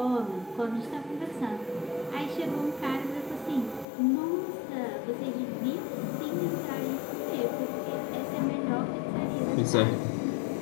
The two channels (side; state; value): right; drops out; at 3.9 s